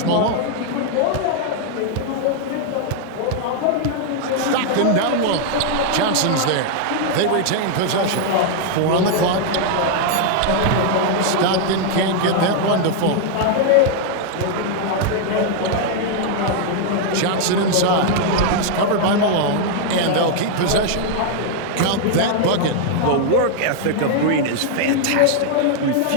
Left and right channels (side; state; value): both; different; correlation 0.00